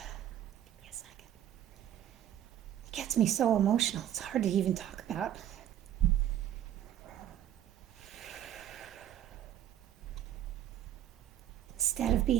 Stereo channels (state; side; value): quieter; left; 11.1 dB